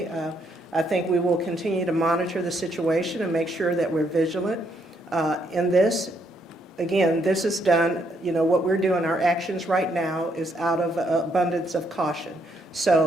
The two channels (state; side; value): normal; both; correlation 0.73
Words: I think we will continue to monitor the situation and make sure that we're vigilant in this. Again, this is done, you know, what we're doing, our actions right now is out of abundance of caution.